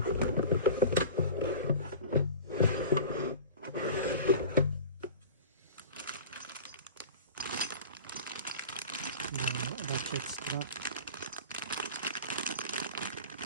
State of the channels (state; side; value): inverted; both; correlation -0.37